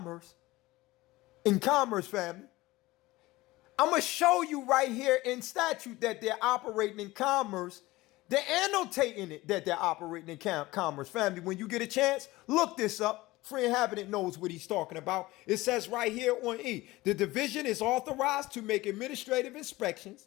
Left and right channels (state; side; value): quieter; right; 19.2 dB